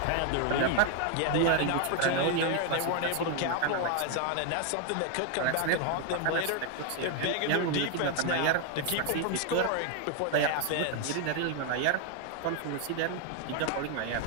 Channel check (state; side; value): different; both; correlation 0.00